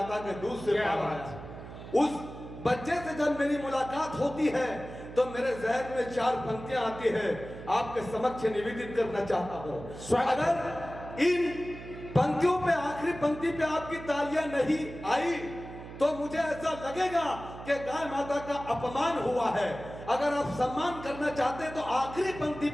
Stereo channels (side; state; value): right; noise; hum, 13 dB below the sound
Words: के दूध से पाला गया। उस बच्चे से जब मेरी मुलाकात होती है तो मेरे जहन में 4 पंक्तियां आती है, आपके समक्ष निवेदित करना चाहता हूं। अगर इन पंक्तियों पे आखिरी पंक्ति पे आपकी तालियां नहीं आई तो मुझे ऐसा लगेगा कि गाय माता का अपमान हुआ है। अगर आप सम्मान करना चाहते हैं तो आखिरी पंक्ति